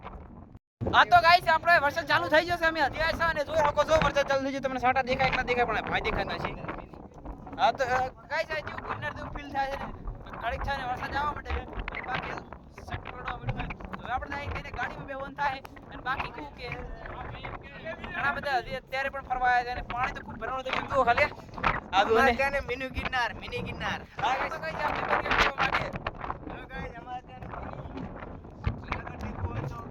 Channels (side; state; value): both; identical; correlation 1.00